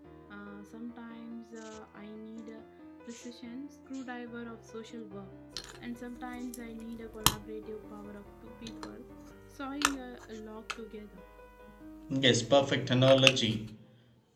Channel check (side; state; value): both; identical; correlation 1.00